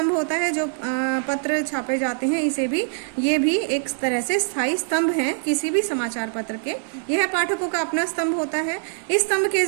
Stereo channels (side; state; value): left; silent; digital silence